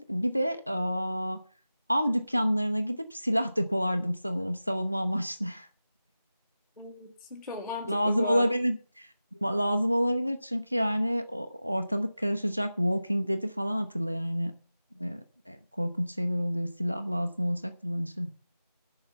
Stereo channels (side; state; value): both; inverted; correlation -0.96